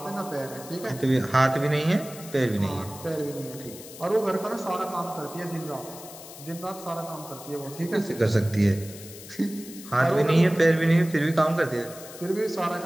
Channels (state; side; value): noise; left; hiss, 15 dB below the sound